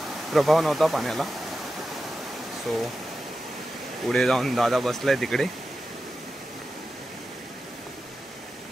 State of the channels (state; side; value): normal; both; correlation 0.91